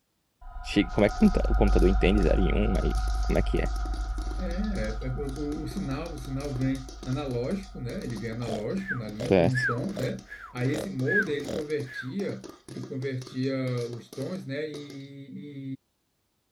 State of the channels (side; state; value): both; identical; correlation 1.00